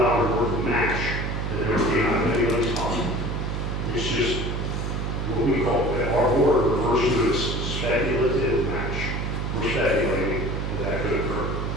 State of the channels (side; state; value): right; noise; hum, 2 dB below the sound